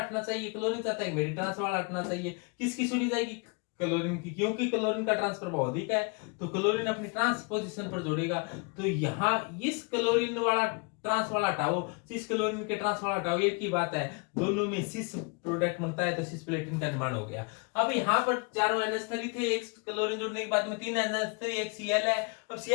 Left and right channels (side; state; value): right; quieter; 32.5 dB